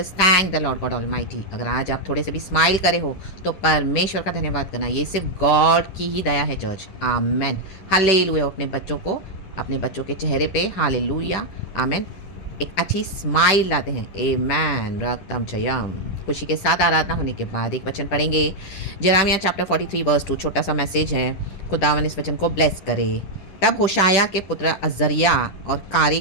us thank the Lord God Almighty. अगर आज आप थोड़े से भी smile करे हो तो परमेश्वर का धन्यवाद करना। ये सिर्फ गॉड की ही दया है, चर्च। आमेन। हालेलुया। अपने बच्चों को, अपने बच्चों के चेहरे पे हालेलुया, आमेन, एक अच्छी स्माइल लाते हैं। आमेन। रक्तम जयम। खुशी के साथ आराधना होने के बाद एक वचन पढ़ेंगे। Jeremiah chapter 43 verse 2। छोटा सा मैसेज है। खुदावन इस वचन को ब्लेस करे। तब होशाया के पुत्र अजरिया और कारी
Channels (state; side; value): late; right; 10 ms